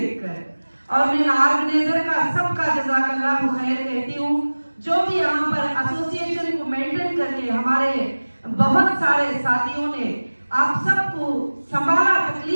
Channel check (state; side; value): inverted; both; correlation -1.00